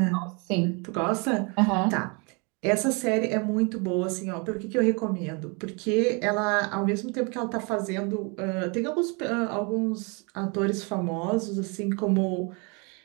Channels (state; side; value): quieter; left; 32.1 dB